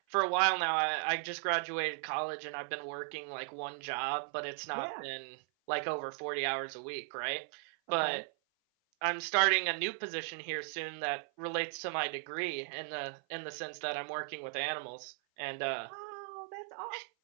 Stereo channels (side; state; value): left; silent; 53 dB below the other